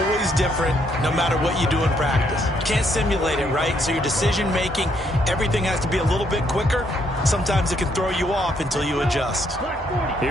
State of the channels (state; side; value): normal; both; correlation 0.72